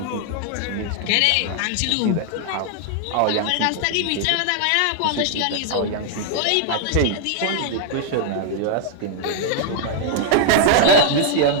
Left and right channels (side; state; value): both; different; correlation 0.00